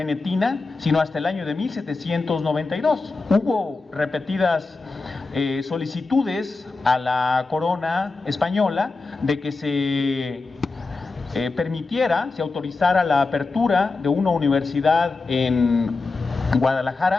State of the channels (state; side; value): quieter; right; 3.8 dB